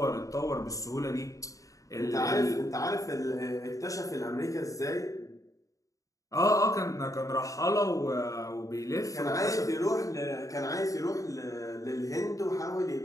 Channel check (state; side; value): late; right; 0.16 ms